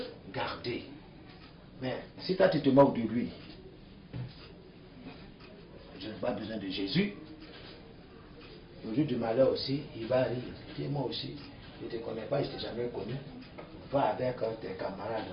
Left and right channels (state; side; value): identical; both; correlation 1.00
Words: garder. Mais si toi tu te moques de lui, je n'ai pas besoin de Jésus. Le jour du malheur aussi, il va rire. Dis moi aussi, je ne te connais pas, je ne t'ai jamais connu. Va avec tes camarades